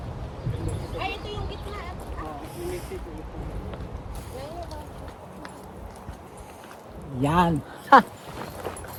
Ay, ito yung gitna. Yan. Ha!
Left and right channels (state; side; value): identical; both; correlation 1.00